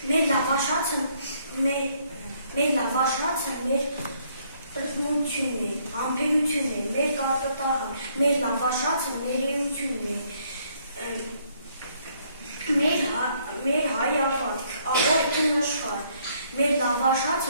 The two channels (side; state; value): both; inverted; correlation -0.68